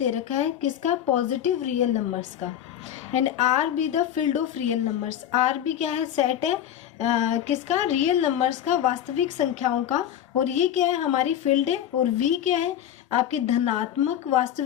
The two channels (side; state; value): right; quieter; 10.5 dB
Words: रखा है किसका? पॉजिटिव रियल नंबर्स का। And R be the field of real numbers. R be क्या है? सेट है किसका? रियल नंबर्स का, वास्तविक संख्याओं का। और ये क्या है? हमारी फील्ड है। और वी क्या है? आपकी धनात्मक